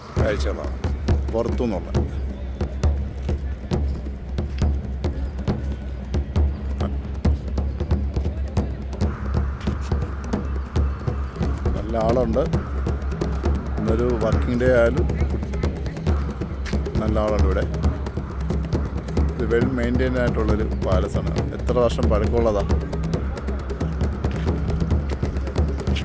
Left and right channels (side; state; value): both; identical; correlation 1.00